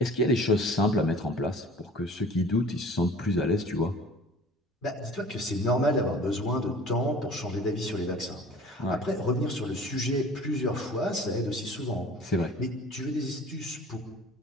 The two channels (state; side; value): normal; both; correlation 0.46